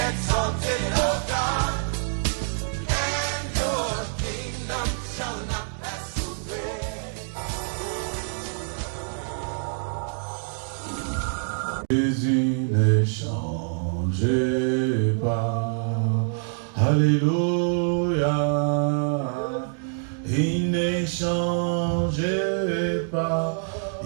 Jésus ne change pas, alléluia, il ne change pas,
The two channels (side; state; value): left; silent; digital silence